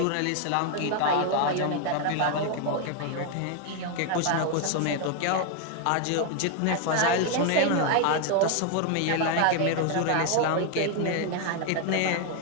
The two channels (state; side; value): different; both; correlation 0.01